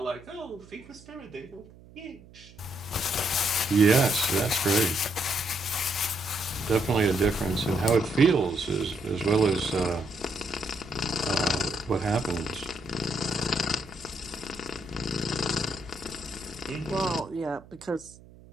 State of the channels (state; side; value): noise; right; hum, 22 dB below the sound